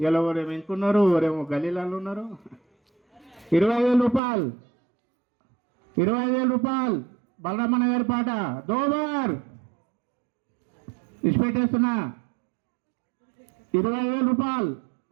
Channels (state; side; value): drops out; left; at 4.2 s